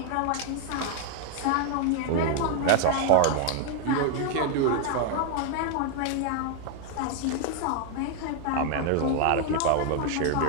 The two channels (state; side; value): different; both; correlation 0.00